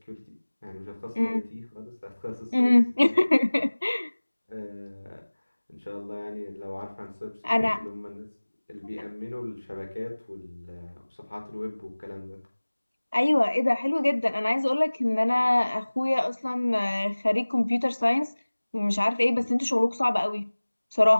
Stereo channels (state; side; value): inverted; both; correlation -1.00